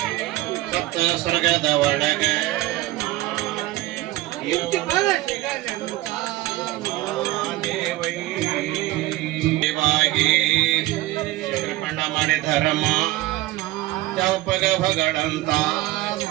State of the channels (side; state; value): left; quieter; 17.3 dB